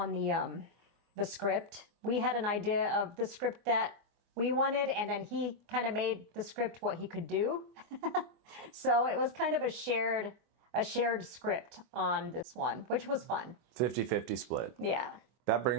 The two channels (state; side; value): late; left; 24 ms